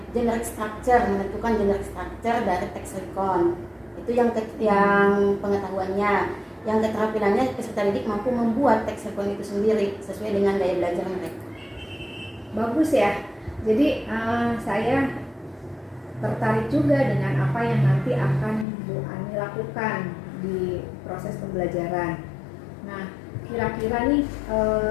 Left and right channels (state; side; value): drops out; right; at 18.7 s